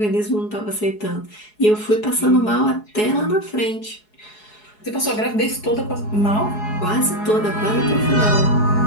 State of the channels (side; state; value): right; late; 4.7 ms